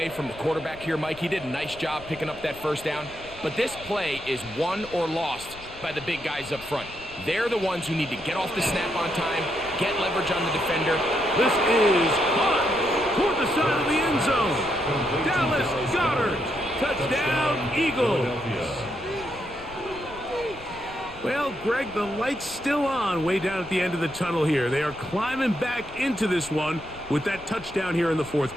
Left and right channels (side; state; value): left; noise; rumble, 18 dB below the sound